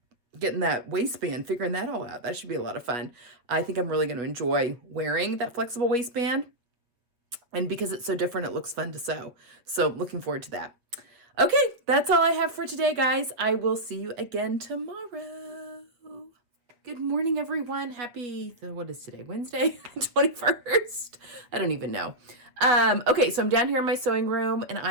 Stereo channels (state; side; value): late; left; 8.0 ms